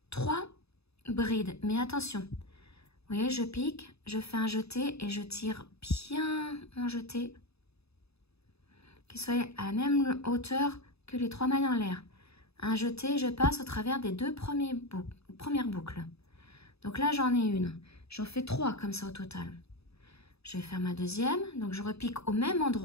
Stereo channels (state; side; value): late; right; 0.79 ms